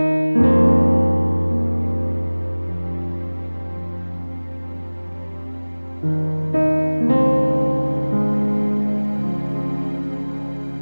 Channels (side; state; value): both; inverted; correlation -1.00